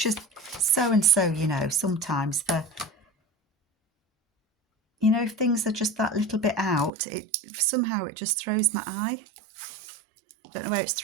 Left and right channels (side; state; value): left; drops out; at 6.9 s